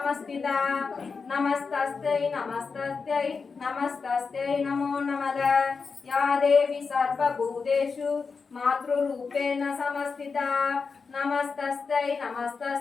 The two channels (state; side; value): quieter; right; 5.0 dB